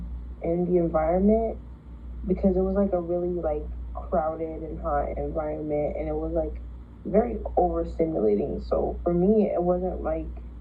in the environment, because it was like a really like crowded and hot environment, and it was like very overstimulating. So for me, it wasn't like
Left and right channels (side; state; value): both; identical; correlation 1.00